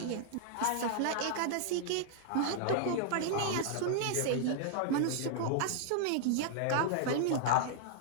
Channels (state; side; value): different; both; correlation -0.01